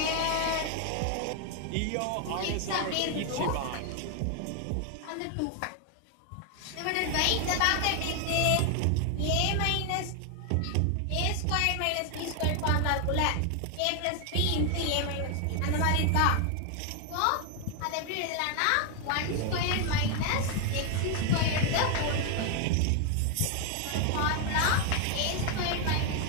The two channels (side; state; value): both; different; correlation 0.01